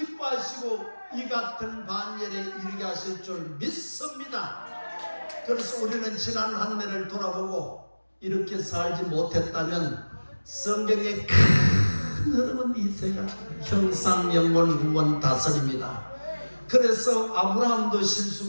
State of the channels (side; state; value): both; inverted; correlation -1.00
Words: 이 같은 반열에 이르게 하실 줄 믿습니다. 그래서 우리는 지난 한 해를 돌아보고 이렇게 살지 못했다면 성경의 큰 흐름은 이세가 형상, 영원, 구원, 다스립니다. 그래서 아브라함도